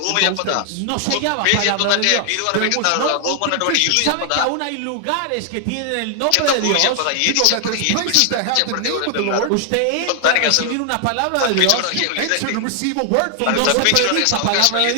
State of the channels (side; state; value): both; different; correlation 0.00